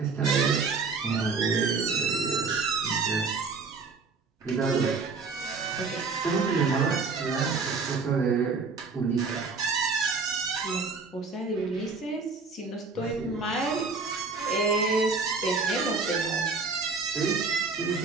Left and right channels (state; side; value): quieter; left; 4.5 dB